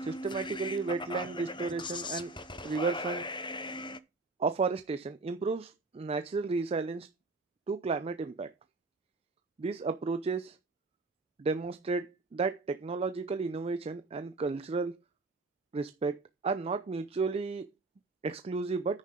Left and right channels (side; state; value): left; quieter; 3.5 dB